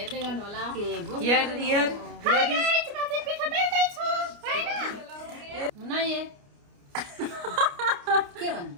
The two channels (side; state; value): left; late; 29 ms